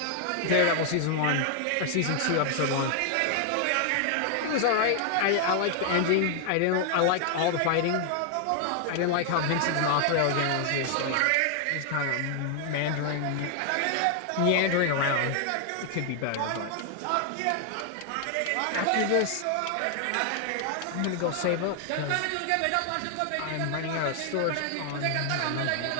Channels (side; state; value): both; different; correlation 0.00